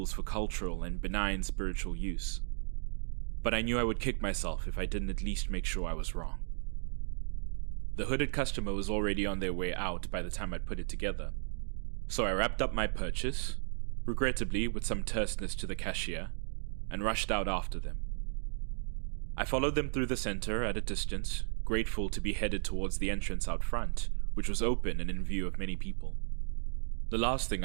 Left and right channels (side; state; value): left; silent; 55 dB below the other